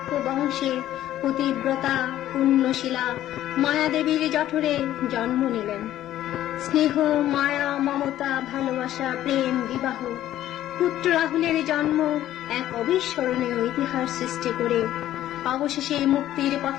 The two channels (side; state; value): right; quieter; 13.0 dB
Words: বংশে পতিব্রতা পুণ্যশীলা মায়াদেবীর জঠরে জন্ম নিলেন। স্নেহ, মায়া, মমতা, ভালোবাসা, প্রেম, বিবাহ, পুত্র রাহুলের জন্ম এক অবিস্মরণীয় ইতিহাস সৃষ্টি করে অবশেষে মুক্তির